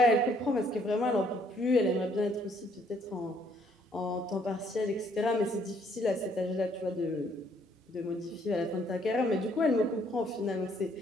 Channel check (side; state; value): both; normal; correlation 0.66